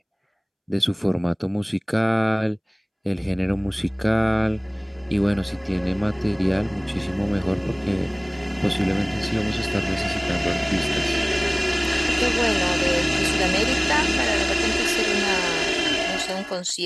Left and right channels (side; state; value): both; identical; correlation 1.00